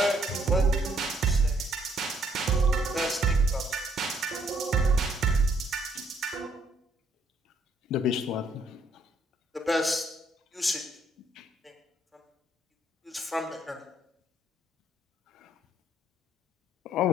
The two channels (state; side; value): normal; both; correlation 0.68